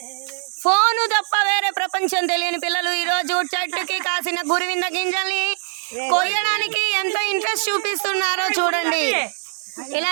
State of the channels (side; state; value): left; silent; 59 dB below the other